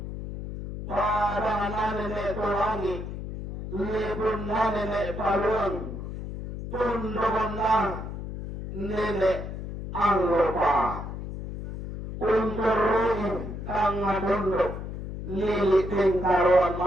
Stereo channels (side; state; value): left; noise; hum, 8 dB below the sound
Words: pada nanene tulangi, libun nanene paluang, tundungan na nene ang lupa. Unturuin kang tunduk, liliting karuan